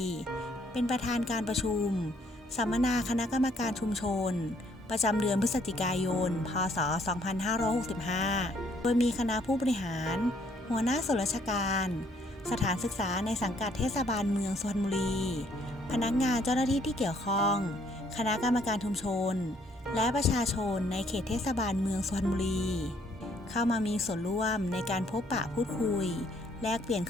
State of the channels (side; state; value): both; normal; correlation 0.66